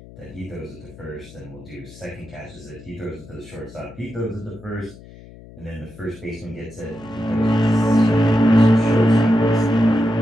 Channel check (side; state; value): left; noise; hum, 19 dB below the sound